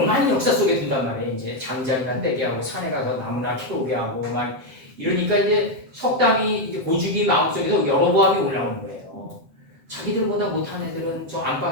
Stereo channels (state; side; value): late; left; 7.6 ms